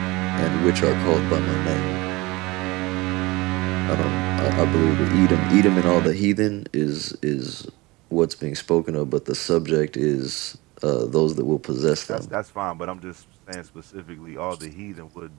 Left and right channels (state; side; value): quieter; left; 22.3 dB